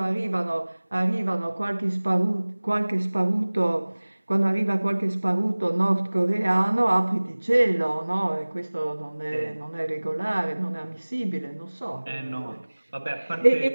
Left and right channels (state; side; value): inverted; both; correlation -1.00